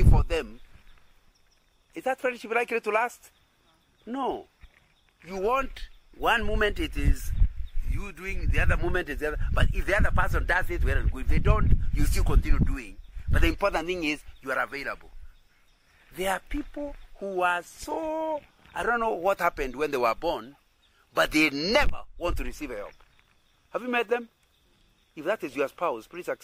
for them, is that friendship likely to last? No. You want one moment it is you doing, the other moment is the other. But if the other person does it, well and good. If they don't, you still continue doing. But the important thing is you are available. There are people who are so, I don't know what happened when they were born, but they never want to receive help. Have you met them? If that is your spouse, please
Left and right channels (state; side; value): identical; both; correlation 1.00